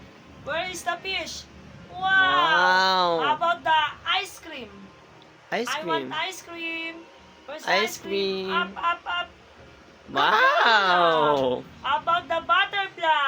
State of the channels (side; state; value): both; identical; correlation 1.00